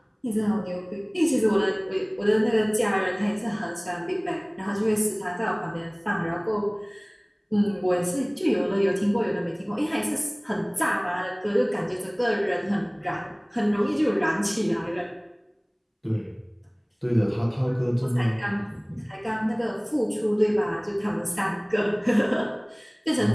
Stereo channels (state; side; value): identical; both; correlation 1.00